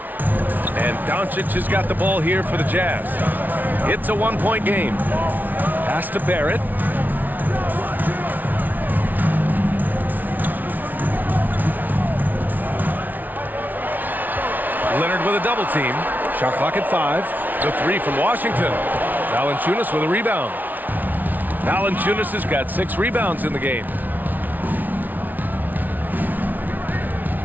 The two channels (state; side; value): late; left; 0.082 ms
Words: And Doncic has got the ball here for the Jazz. It's a 1-point game. Pass to Barrett. Leonard with a double team. Shot clock at 5. The 3 from Washington. Valanciunas with a rebound. Valanciunas has got 6 rebounds in the game.